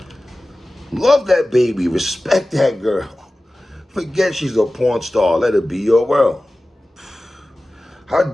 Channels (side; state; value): both; normal; correlation 0.96